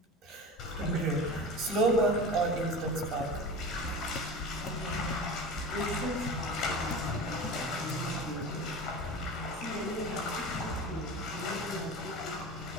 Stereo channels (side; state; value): both; normal; correlation 0.32